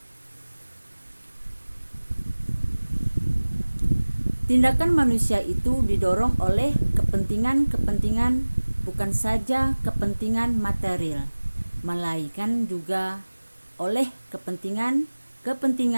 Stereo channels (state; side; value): inverted; both; correlation -1.00